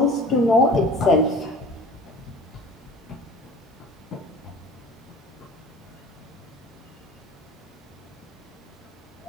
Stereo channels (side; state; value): both; normal; correlation 0.42